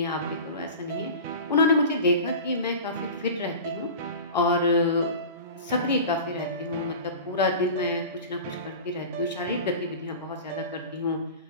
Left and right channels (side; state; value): both; inverted; correlation -0.34